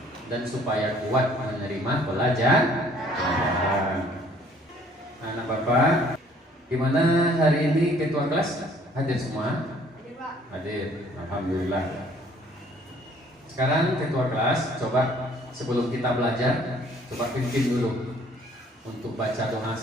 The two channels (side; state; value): both; normal; correlation 0.58